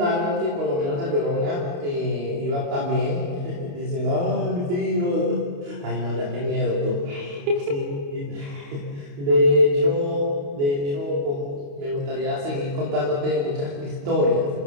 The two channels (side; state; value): left; late; 28 ms